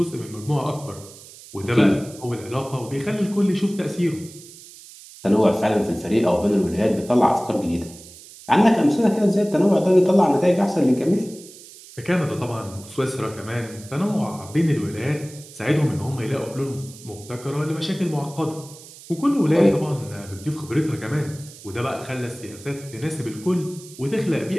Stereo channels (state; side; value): noise; right; hiss, 19 dB below the sound